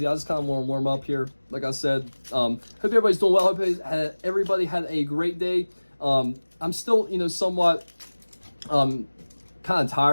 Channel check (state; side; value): inverted; both; correlation -1.00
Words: I just kind of want to warm up here. Like I said, hope everybody's doing well. Hope everybody had a great day. I'm still, somewhat kind of